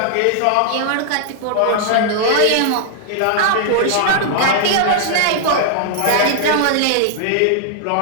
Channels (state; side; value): different; both; correlation -0.01